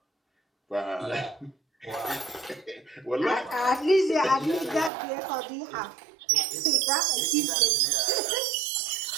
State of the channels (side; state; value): left; drops out; at 4.9 s